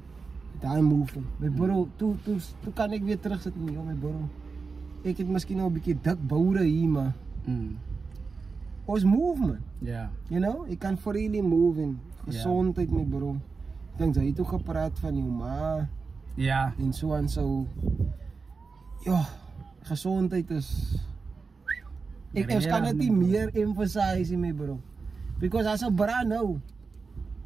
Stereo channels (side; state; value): left; quieter; 4.6 dB